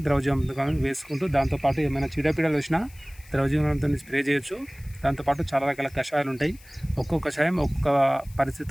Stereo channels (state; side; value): noise; left; hiss, 25 dB below the sound